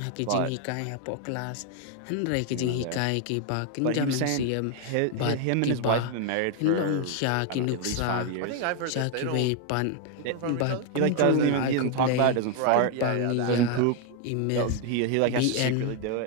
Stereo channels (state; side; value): different; both; correlation 0.01